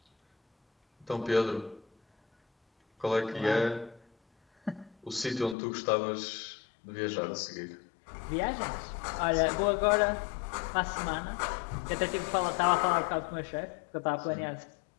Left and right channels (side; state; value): right; drops out; at 5.6 s